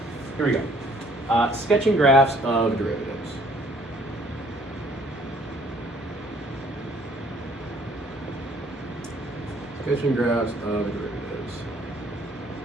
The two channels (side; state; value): both; normal; correlation 0.60